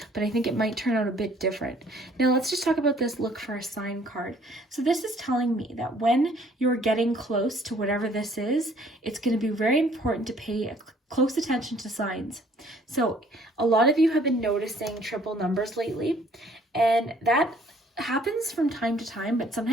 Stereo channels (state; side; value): normal; both; correlation 0.59